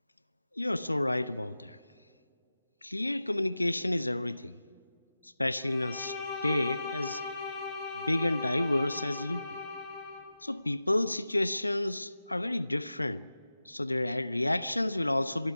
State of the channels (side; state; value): both; inverted; correlation -0.93